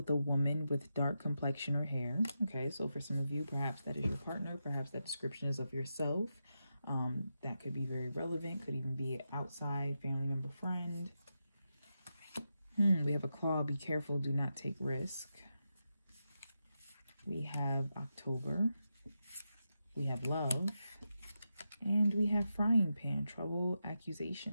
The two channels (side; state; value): both; inverted; correlation -0.88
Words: a woman with dark complexion or hair. Okay, so for some of you, perhaps that is your partner, perhaps that description is of yourself. that could be very relevant, could even be outside, family member, friend. We have a claw, be careful, do not take risk. We have October. We have love. And we have frying pan, trouble,